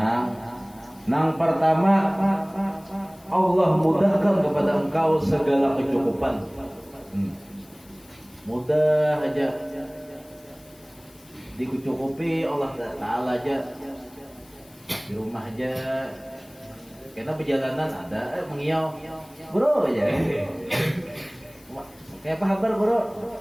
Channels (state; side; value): noise; left; hiss, 26 dB below the sound